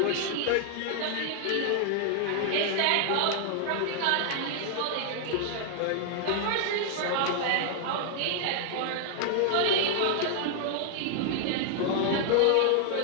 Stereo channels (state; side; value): different; both; correlation 0.00